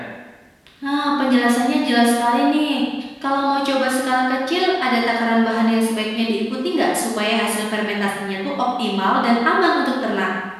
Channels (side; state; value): both; identical; correlation 1.00